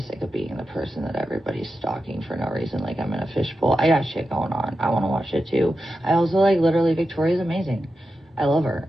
of being the person that everybody's stalking for no reason, like I'm in a fishbowl. I got shit going on. I want to watch it too. I also like literally Victoria's amazing. I love her.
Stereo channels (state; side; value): normal; both; correlation 0.90